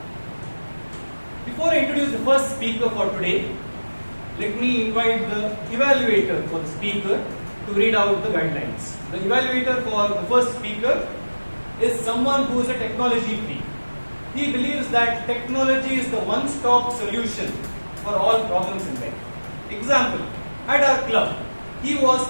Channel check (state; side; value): inverted; both; correlation -1.00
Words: Before I introduce the first speaker for today, let me invite the evaluator for the speaker to read out the guidelines. The evaluator for the first speaker is someone who is a technology freak. He believes that technology is the one-stop solution for all problems in life. Example, at our club, he was